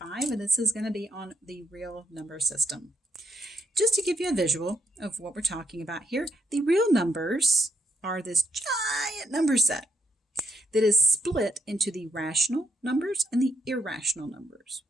and this is going to be on the real number system. Just to give you a visual of what we're talking about here, the real numbers are this giant number set that is split into the rational numbers and the irrational numbers.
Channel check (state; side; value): normal; both; correlation 0.75